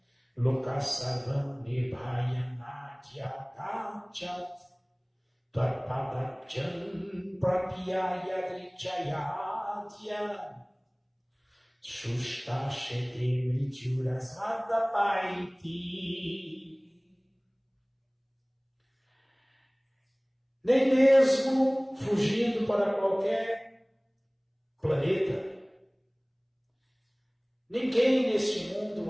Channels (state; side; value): identical; both; correlation 1.00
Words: Lokasavam Nibhaya Natya Dachat Tvarpadachan Prapyaya Drichayadya Shushta Shete Mrityurasada Paiti. nem mesmo fugindo para qualquer planeta. Ninguém neste mundo